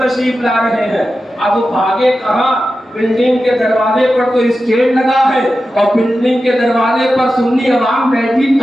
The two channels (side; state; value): both; normal; correlation 0.92